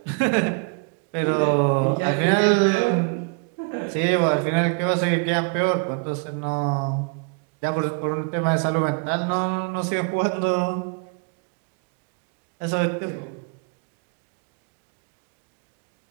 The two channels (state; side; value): quieter; left; 36.2 dB